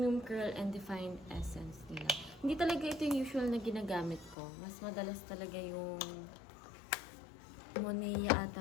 Curl and Defined Essence nila. Hindi talaga ito yung usual na ginagamit ko. Mas madalas talaga yung Monea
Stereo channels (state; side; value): drops out; right; at 4.4 s